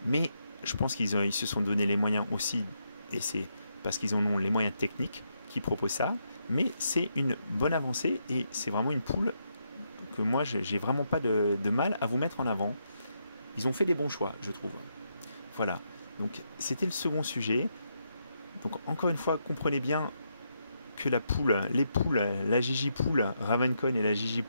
Mais Je pense ils se sont donné les moyens aussi, et c'est parce qu'ils en ont les moyens techniques qui proposent ça, mais c'est une bonne avancée et c'est vraiment une poule que moi j'ai vraiment pas de mal à vous mettre en avant. Ils ont fait des bons choix, je trouve. Voilà, donc c'était le second sujet. Donc encore une fois, comprenez bien que les poules, la Gigi poule Ravencon et la Gigi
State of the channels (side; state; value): both; inverted; correlation -0.80